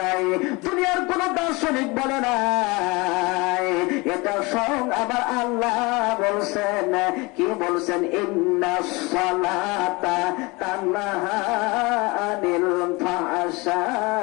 নাই, দুনিয়ার কোন দার্শনিক বলে নাই, এটা স্বয়ং আমার আল্লাহ বলছেন। কি বলছেন? ইন্নাস সালাতা তানহা আনিল ফাহশাই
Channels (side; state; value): right; quieter; 25.2 dB